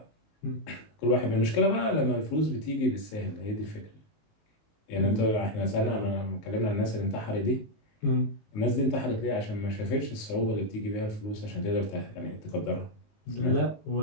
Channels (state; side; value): late; right; 19 ms